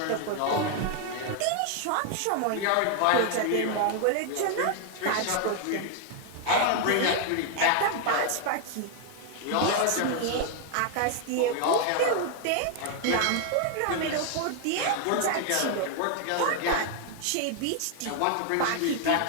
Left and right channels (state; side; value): different; both; correlation 0.00